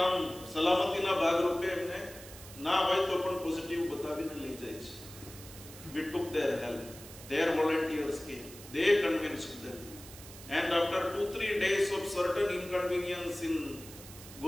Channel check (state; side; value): noise; right; hiss, 16 dB below the sound